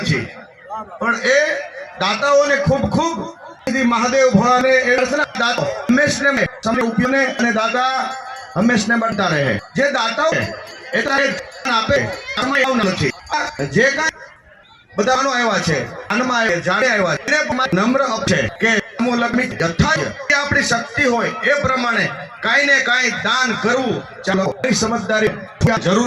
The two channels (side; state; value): both; identical; correlation 1.00